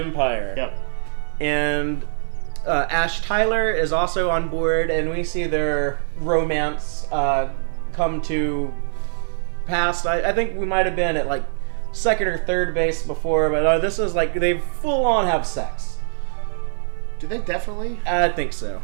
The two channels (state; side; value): silent; left; digital silence